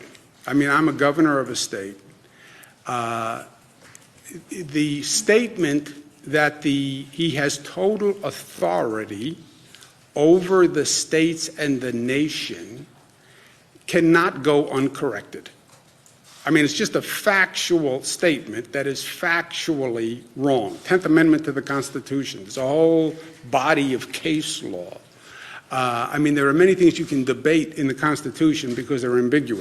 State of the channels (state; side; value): identical; both; correlation 1.00